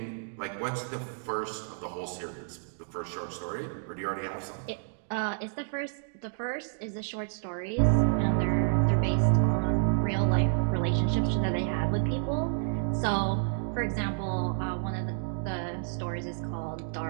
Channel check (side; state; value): left; silent; digital silence